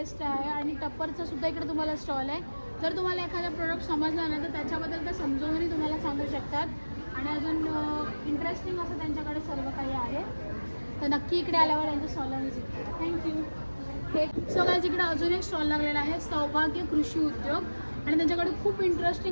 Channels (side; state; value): both; inverted; correlation -1.00